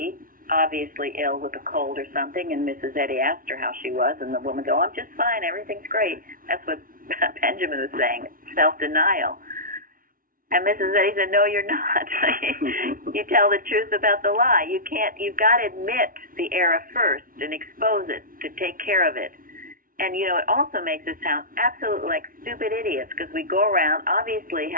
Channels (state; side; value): late; left; 0.41 ms